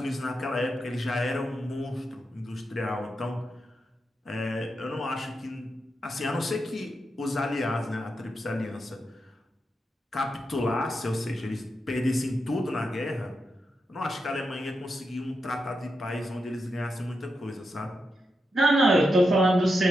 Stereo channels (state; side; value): normal; both; correlation 0.86